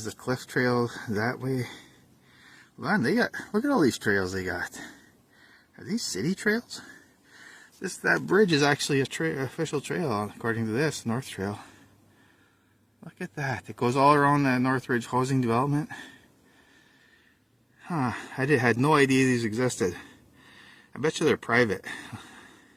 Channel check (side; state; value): both; identical; correlation 1.00